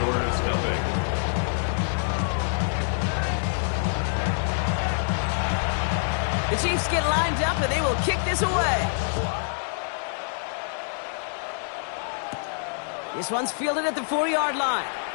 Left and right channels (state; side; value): silent; right; digital silence